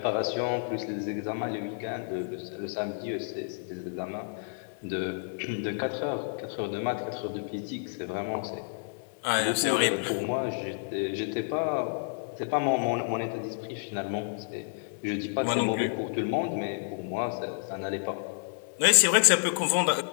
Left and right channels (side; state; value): right; silent; digital silence